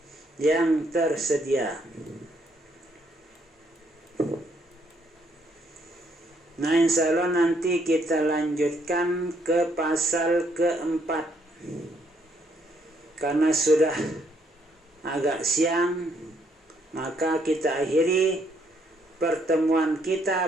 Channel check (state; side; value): normal; both; correlation 0.70